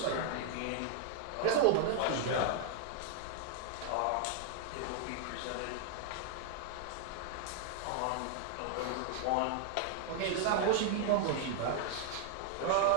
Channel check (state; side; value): different; both; correlation -0.01